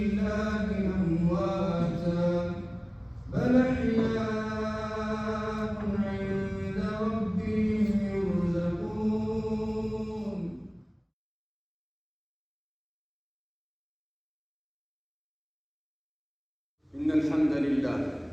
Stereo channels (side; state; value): both; identical; correlation 1.00